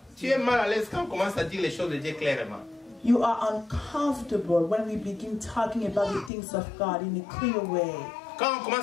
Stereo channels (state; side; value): drops out; right; at 6.3 s